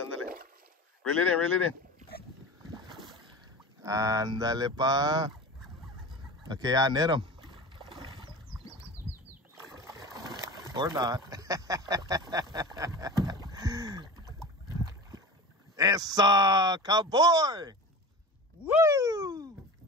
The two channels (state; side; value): normal; both; correlation 0.33